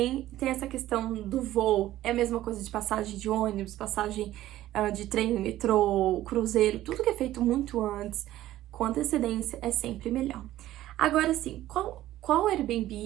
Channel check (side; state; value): left; quieter; 14.4 dB